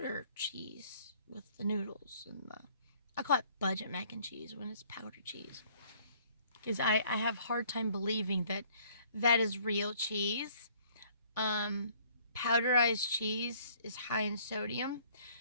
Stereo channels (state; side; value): inverted; both; correlation -0.58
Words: cheese with the noodles and I call it budget mac and cheese when it's powder cheese. Because I have a hard time believing that is real cheese. Powderized cheese is high in sodium.